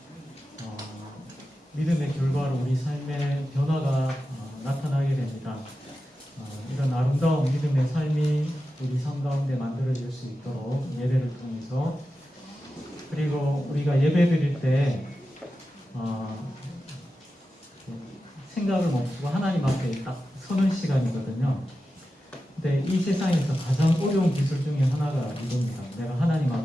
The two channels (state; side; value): normal; both; correlation 0.92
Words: 믿음의 결과로 우리 삶의 변화가 나타나게 됩니다. 이런 아름다운 믿음의 삶이 우리 삶 가운데 만들어질 수 있도록 예배를 통해서, 그리고 우리가 예배 드릴 때 생각을 멈추고 하나님 앞에 딱 서는 시간이거든요. 근데 이 세상에서 가장 어려운 기술 중에 하나가 이겁니다. 내가 하나님